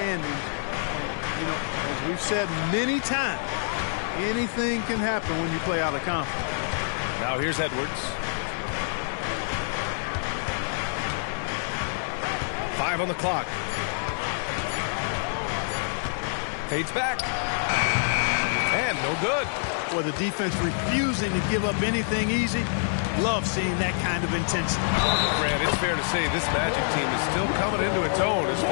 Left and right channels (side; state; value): right; silent; digital silence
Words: And, you know, as we've said many times, anything can happen when you play out of conference. Now here's Edwards. 5 on the clock. Fades back. And no good. Well, the defense refusing to give up anything easy. Love seeing that kind of intensity. Grant, it's fair to say this Magic team is still coming into its own as